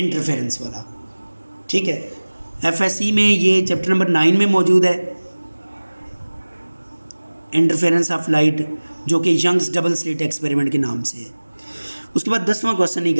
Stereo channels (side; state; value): both; inverted; correlation -1.00